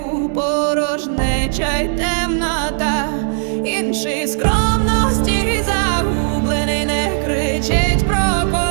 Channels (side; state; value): left; silent; digital silence